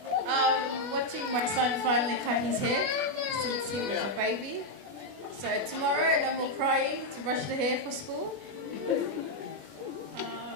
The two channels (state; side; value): late; left; 20 ms